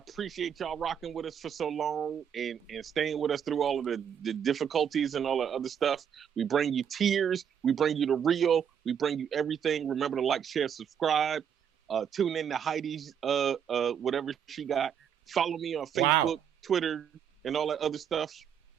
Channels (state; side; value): quieter; left; 8.2 dB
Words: y'all rocking with us for so long and staying with us through all of the difficulties and all the other stuff. We bring you tears. We bring you the real. We bring you everything. Remember to like, share, subscribe. Tune in to Heidi's whatever she got. Follow me on Facebook, Twitter, and all that other stuff.